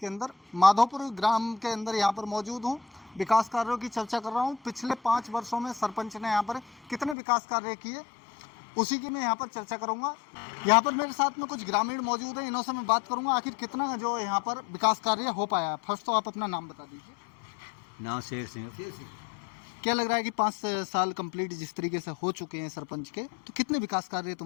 अंदर, माधोपुर ग्राम के अंदर यहाँ पर मौजूद हूँ। विकास कार्यों की चर्चा कर रहा हूँ। पिछले 5 वर्षों में सरपंच ने यहाँ पर कितने विकास कार्य किए, उसी की मैं यहाँ पर चर्चा करूँगा। यहाँ पर मेरे साथ में कुछ ग्रामीण मौजूद हैं, इन्हों से मैं बात करूँगा आखिर कितना जो यहाँ पर विकास कार्य हो पाया। फर्स्ट तो आप अपना नाम बता दीजिए। नाम शेर सिंह। क्या लग रहा है कि 5 साल कंप्लीट जिस तरीके से हो चुके हैं सरपंच के, तो कितने विकास कार्य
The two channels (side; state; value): right; drops out; at 7.2 s